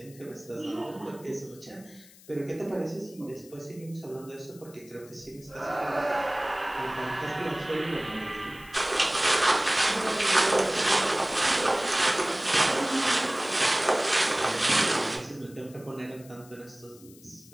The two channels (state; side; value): noise; left; hiss, 23 dB below the sound